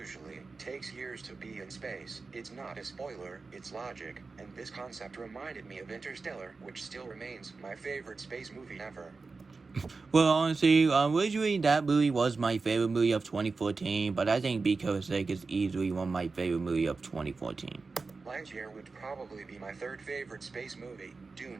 takes years to be in space. It's not a spoiler, it's logic, and this concept reminded me of Interstellar, which still remains my favorite space movie ever. Well, honestly, originally that movie was my favorite movie of 2014, but I think Because Sake is easily one of my favorite movie of 2014. Lightyear would probably be my third favorite space movie.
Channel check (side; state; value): left; quieter; 4.1 dB